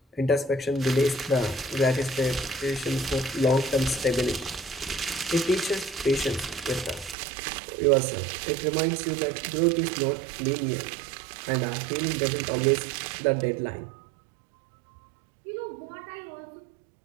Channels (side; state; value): left; drops out; at 7.2 s